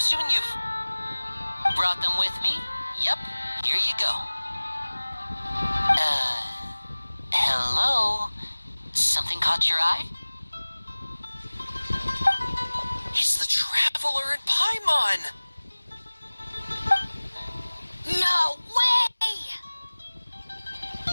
you've brought them with me? Yep, here you go. Hello? Something caught your eye? in Paimon! No way!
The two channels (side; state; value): both; inverted; correlation -1.00